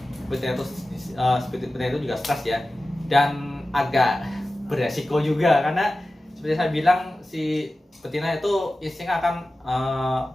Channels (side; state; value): both; normal; correlation 0.95